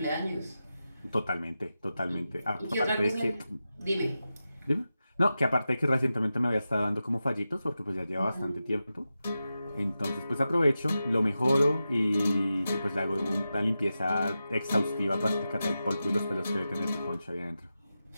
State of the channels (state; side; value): inverted; both; correlation -0.92